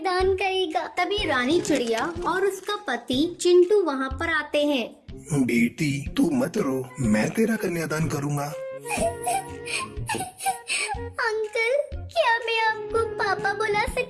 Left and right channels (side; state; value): both; identical; correlation 1.00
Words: करेगा। तभी रानी चिड़िया और उसका पति चिंटू वहाँ पर आते हैं। बेटी तू मत रो, मैं तेरा कन्यादान करूँगा। अंकल, क्या मैं आपको पापा बुला